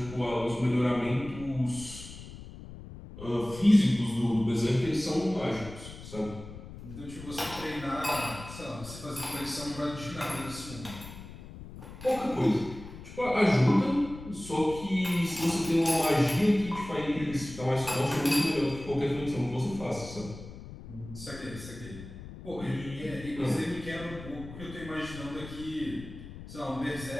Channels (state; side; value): noise; left; rumble, 14 dB below the sound